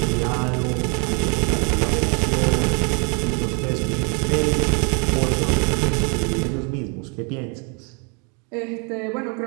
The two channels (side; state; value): left; quieter; 35.1 dB